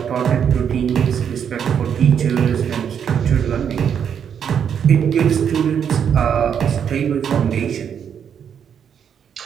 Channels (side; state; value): left; quieter; 8.0 dB